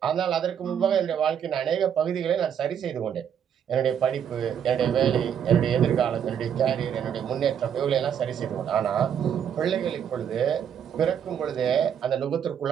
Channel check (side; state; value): left; quieter; 8.6 dB